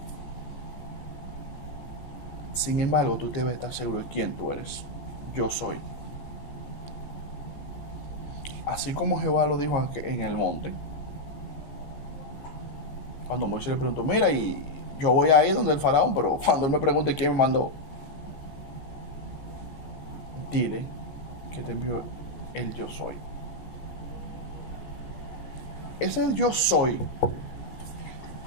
Sin embargo, tú debes estar seguro de quién tú eres. Yo soy. Así como Jehová lo dijo en el monte, cuando Moisés le preguntó, mira, y yo voy a ir donde el faraón, pero cuando él me pregunte quién me mandó, dile que te envío el yo soy. Ese yo soy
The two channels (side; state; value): right; late; 14 ms